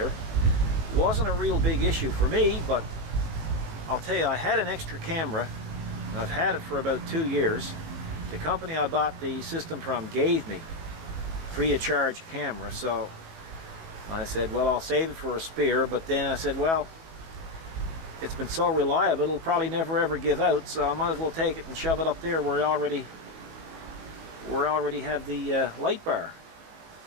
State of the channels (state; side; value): late; left; 18 ms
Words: It wasn't a real big issue for me, but I'll tell you, I had an extra camera. I've had it for about 2 years. The company I bought the system from gave me free of charge camera, so I said, well, I'll save it for a spare. But then I said, well, it's been so reliable, it'll probably never ever give out, so I might as well take it and shove it up there where I already have the light bar.